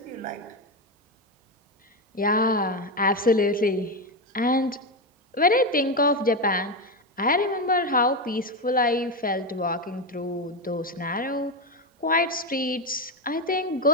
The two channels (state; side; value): normal; both; correlation 0.12